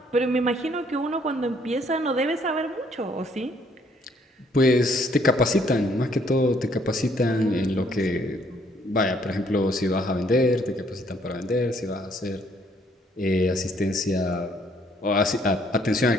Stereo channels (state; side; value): normal; both; correlation 0.65